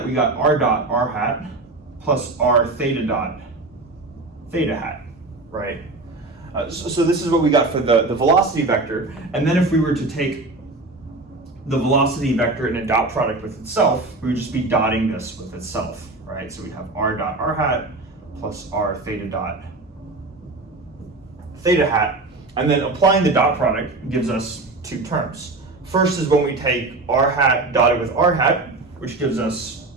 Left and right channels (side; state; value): left; quieter; 3.2 dB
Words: we got r dot r hat plus r theta dot theta hat, right? So this is what we got for the velocity vector. And then if we were to take the velocity vector and a dot product with itself, we would just be dotting this with itself, right? So we'd have r dot r hat plus r theta dot theta hat. And then applying the dot product gives us two terms. First is when we take r hat dotted with r hat, which gives us